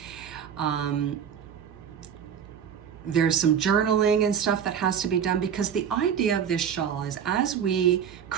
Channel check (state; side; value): quieter; left; 8.0 dB